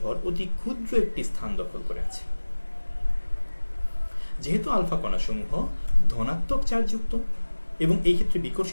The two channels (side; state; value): both; inverted; correlation -1.00